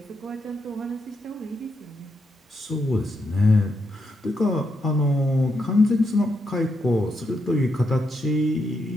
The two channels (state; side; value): normal; both; correlation 0.81